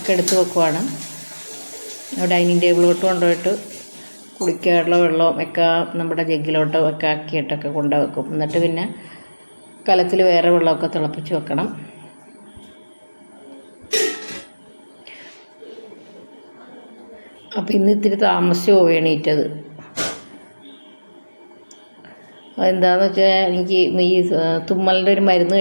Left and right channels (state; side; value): inverted; both; correlation -1.00